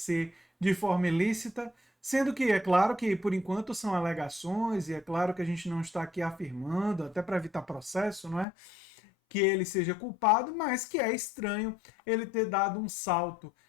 de forma ilícita? Sendo que é claro que por enquanto são alegações e é claro que a gente não está aqui afirmando, até para evitar processo, não é? Que ele seja culpado, mas que é estranho ele ter dado um salto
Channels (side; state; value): right; drops out; at 8.5 s